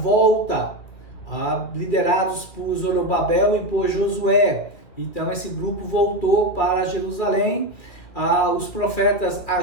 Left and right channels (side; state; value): right; late; 2.6 ms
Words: liderados por Zorobabel e por Josué. Então esse grupo voltou para Jerusalém. Os profetas